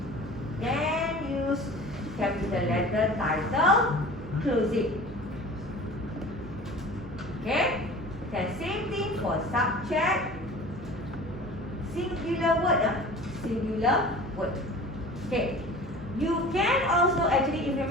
capital letter title, close it. Okay, then same thing for subject, singular word, singular word. Okay, you can also actually, if you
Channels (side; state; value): right; noise; hum, 14 dB below the sound